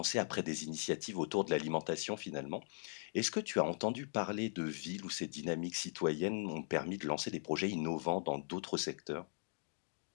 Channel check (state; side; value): silent; right; digital silence